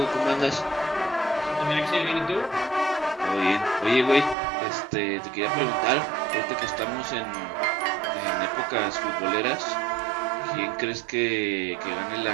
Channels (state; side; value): drops out; left; at 4.4 s